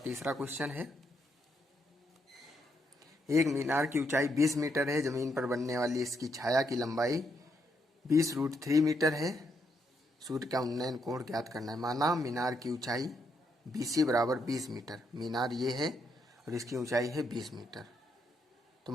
तीसरा क्वेश्चन है, एक मीनार की ऊंचाई 20 मीटर है, जमीन पर बनने वाली इसकी छाया की लंबाई 20√3 मीटर है, सूर्य का उन्नयन कोण ज्ञात करना है। माना मीनार की ऊंचाई BC बराबर 20 मीटर, मीनार ये है और इसकी ऊंचाई है 20 मीटर, तो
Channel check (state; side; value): normal; both; correlation 0.78